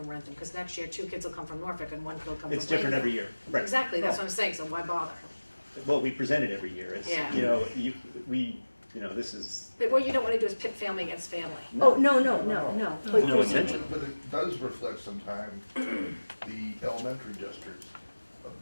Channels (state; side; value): inverted; both; correlation -1.00